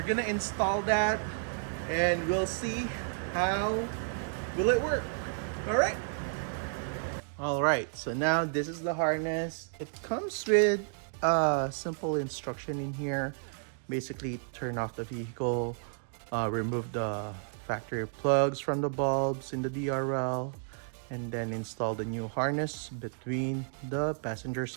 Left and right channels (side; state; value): left; silent; digital silence